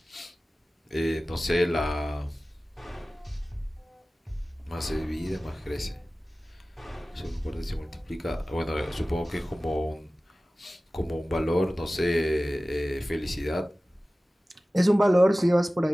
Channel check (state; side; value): normal; both; correlation 0.97